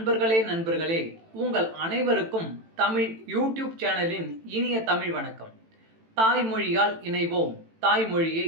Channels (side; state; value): left; late; 18 ms